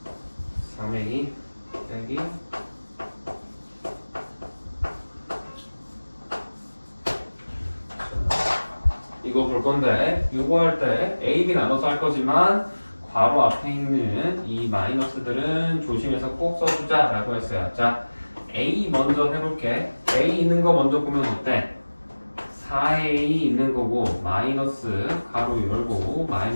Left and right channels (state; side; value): inverted; both; correlation -1.00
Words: 3a 빼기 이거 볼 건데, 이거 할 때 A, B 나눠서 할 거지만 괄호 앞에 있는 이 마이너스들은 조심해서 꼭 써주자 라고 했어요. 자, A 먼저 해볼게. A 있는 거 먼저 보면 어때? 4A 있는 거고 마이너스 가로 열고